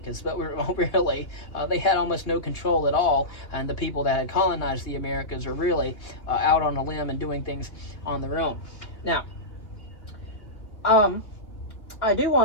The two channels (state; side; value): late; right; 2.9 ms